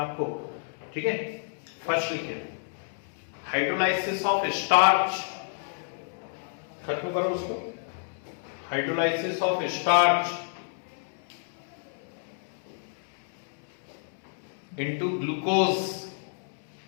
ठीक है, फर्स्ट लिखिए, हाइड्रोलाइसिस ऑफ स्टार्च. खत्म करो उसको. Hydrolysis of starch into glucose.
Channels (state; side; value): silent; right; digital silence